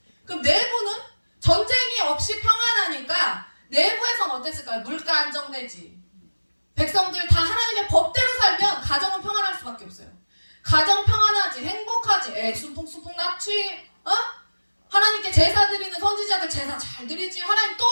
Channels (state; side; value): inverted; both; correlation -1.00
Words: 그럼 내부는 전쟁이 없이 평안하니까 내부에선 어땠을까요? 물가 안정되지. 백성들 다 하나님의 법대로 살면 가정은 평안할 수밖에 없어요. 가정 평안하지, 행복하지, 순풍순풍 났지, 하나님께 제사 드리는 선지자들 제사 잘 드리지, 하나님 또